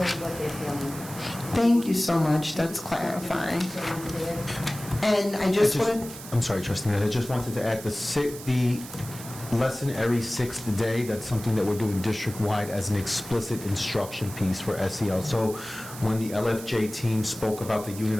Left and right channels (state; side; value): noise; right; hiss, 14 dB below the sound